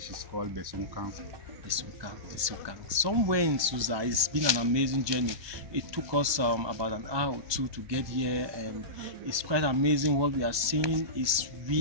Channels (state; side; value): late; left; 1.2 ms